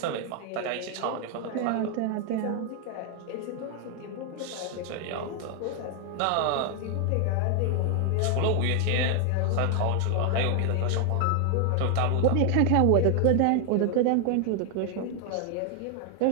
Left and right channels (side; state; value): both; different; correlation 0.00